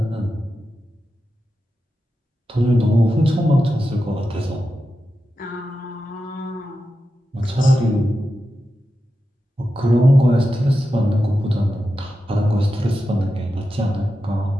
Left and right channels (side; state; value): both; normal; correlation 0.90